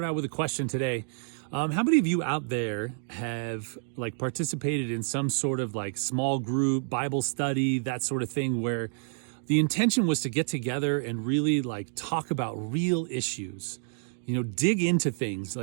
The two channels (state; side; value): silent; left; 59 dB below the other